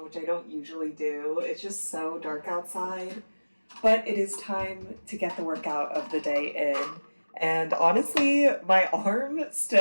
which I don't usually do. It's just so dark outside. But it is time to get the workout of the day in. And honestly, my arm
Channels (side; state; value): both; inverted; correlation -1.00